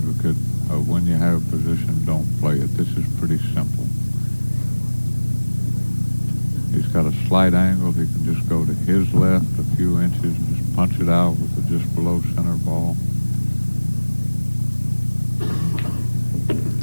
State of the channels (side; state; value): both; inverted; correlation -1.00